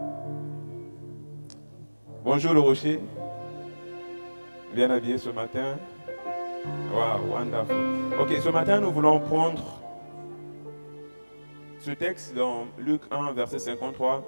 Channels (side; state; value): both; inverted; correlation -1.00